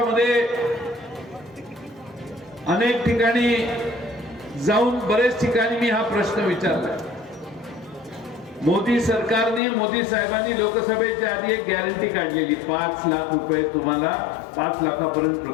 अनेक ठिकाणी जाऊन बरेच ठिकाणी मी हा प्रश्न विचारला. मोदी सरकारने, मोदी साहेबांनी लोकसभेच्या आधी एक गॅरंटी काढलेली, 5 लाख रुपये तुम्हाला, 5 लाखापर्यंत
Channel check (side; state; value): right; drops out; at 9.6 s